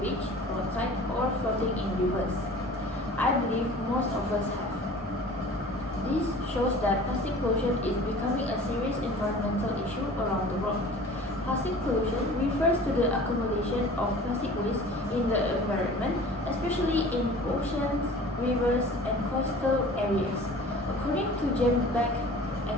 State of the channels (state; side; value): normal; both; correlation 0.43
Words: roadside, or floating in rivers? I believe most of us have. This shows that plastic pollution is becoming a serious environmental issue around the world. Plastic pollution refers to the accumulation of plastic waste in the environment, especially in oceans, rivers, and coastal areas. According to James Beck